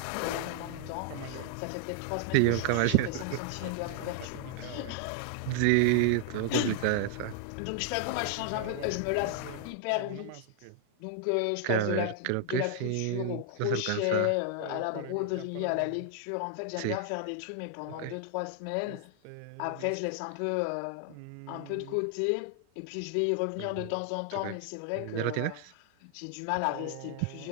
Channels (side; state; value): both; different; correlation 0.00